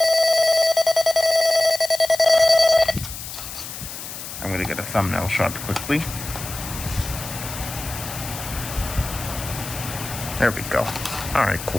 I'm going to get a thumbnail shot quickly. There we go. Alright,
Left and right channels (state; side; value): noise; left; hiss, 10 dB below the sound